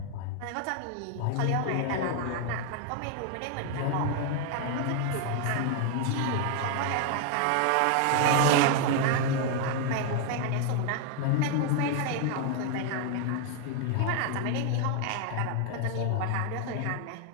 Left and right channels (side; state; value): both; different; correlation 0.01